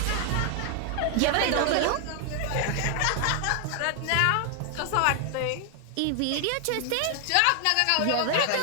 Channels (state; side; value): different; both; correlation 0.00